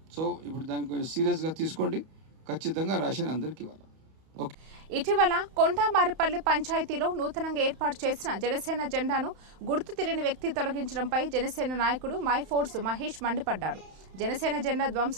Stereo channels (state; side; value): late; left; 31 ms